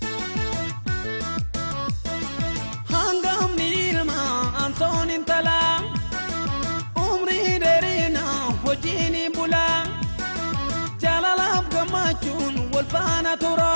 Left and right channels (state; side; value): inverted; both; correlation -1.00